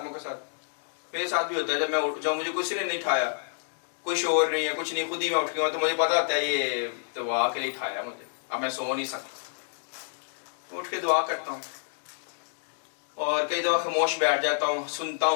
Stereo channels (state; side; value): silent; right; digital silence